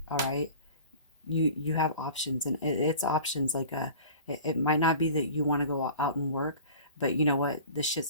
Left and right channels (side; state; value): both; inverted; correlation -0.41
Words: All right. You have options, and it's options like it might not be that you want to go out and work, but you know what,